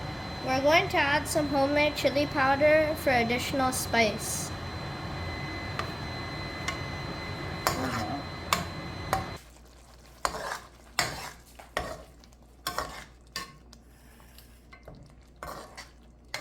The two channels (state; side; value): identical; both; correlation 1.00